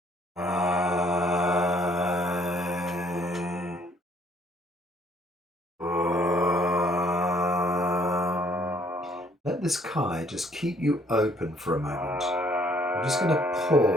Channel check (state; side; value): normal; both; correlation 0.63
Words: Let this Kai just keep you open for a moment. I'm just going to